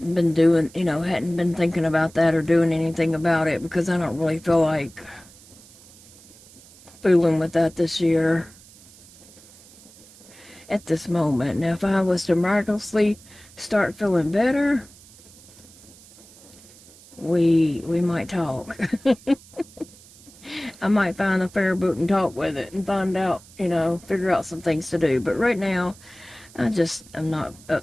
been doing, hadn't been thinking about that or doing anything about it because I don't really feel like fooling with that this year at this moment. Now, if I was to miraculously start feeling better, we might talk. I might find the fair book and talk with it and find out, figure out some things to do. But right now, I'm not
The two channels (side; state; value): right; noise; hiss, 23 dB below the sound